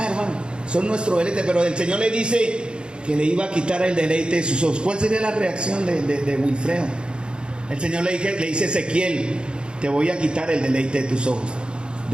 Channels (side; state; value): left; late; 0.052 ms